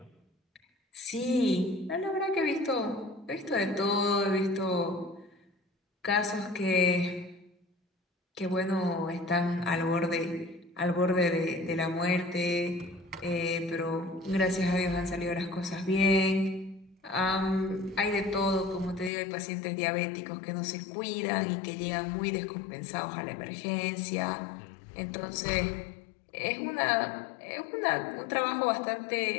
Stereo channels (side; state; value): right; drops out; at 19.1 s